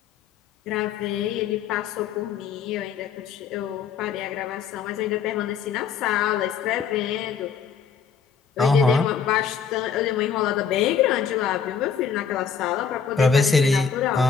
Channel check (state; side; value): quieter; right; 6.7 dB